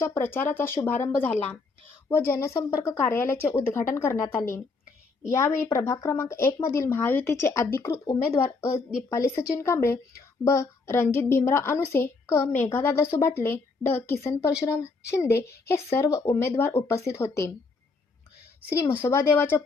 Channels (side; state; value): right; quieter; 4.0 dB